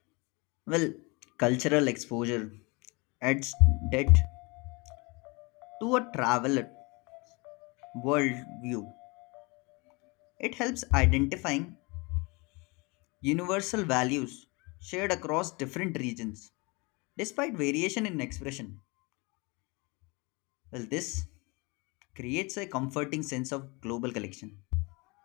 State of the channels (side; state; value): right; quieter; 27.5 dB